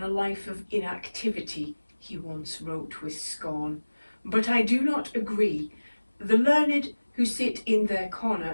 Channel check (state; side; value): inverted; both; correlation -1.00